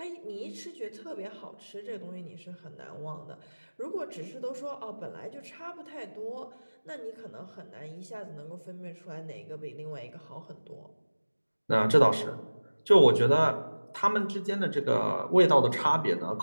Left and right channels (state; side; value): inverted; both; correlation -1.00